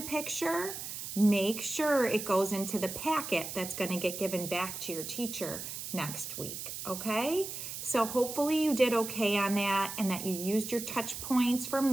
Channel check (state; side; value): noise; right; hiss, 7 dB below the sound